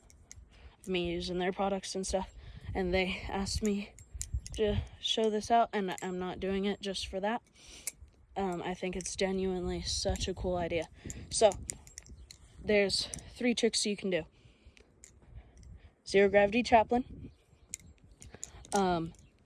me using their products and stuff. And they asked me to show this out, and I'm not doing it just for that. I think it's genuinely such a cool idea. So there's 3 tricks you can do. Zero gravity chaplain.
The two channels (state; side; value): identical; both; correlation 1.00